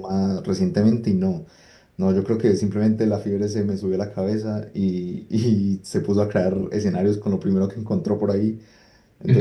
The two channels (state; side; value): identical; both; correlation 1.00